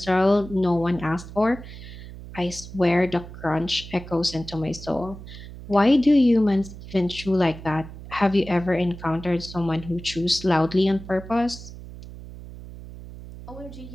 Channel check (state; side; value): noise; right; hum, 14 dB below the sound